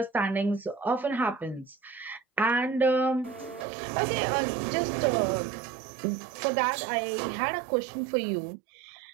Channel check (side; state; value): left; drops out; at 3.7 s